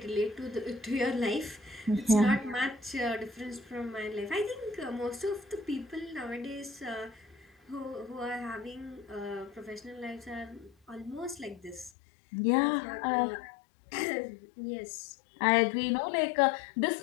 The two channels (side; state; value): right; drops out; at 11.9 s